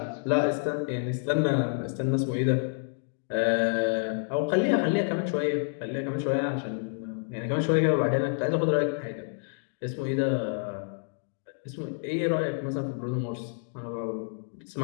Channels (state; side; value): silent; right; 59 dB below the other